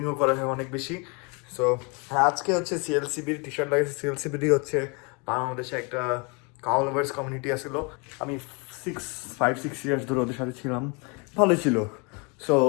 করা হয় অনেক বেশি। সো হ্যাঁ, আজকে হচ্ছে সিএলসিবির টি শার্ট লাগিয়েছে। সিএলসিবিরই হচ্ছে বাংলাদেশে একটা কাউ লাভার্স কমিউনিটি আসলো। আমি 5-6 ইয়ার্স ধরে ওদের সাথে ছিলাম, ভালোই ছিল। So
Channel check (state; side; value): quieter; right; 31.7 dB